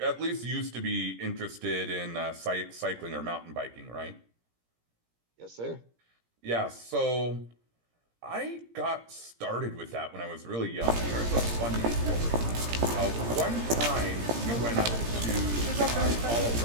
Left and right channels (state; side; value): late; left; 17 ms